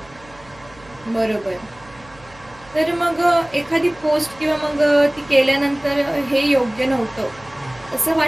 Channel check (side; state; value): right; noise; hum, 24 dB below the sound